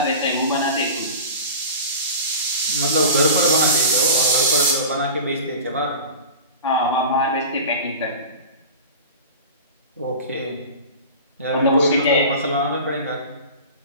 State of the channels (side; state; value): both; inverted; correlation -0.34